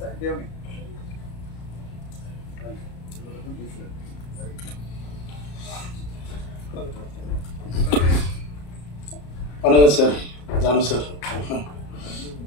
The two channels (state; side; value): late; right; 34 ms